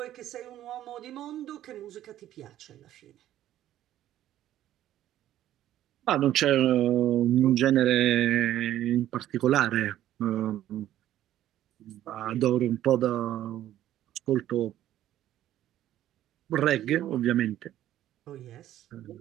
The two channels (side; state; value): left; quieter; 12.7 dB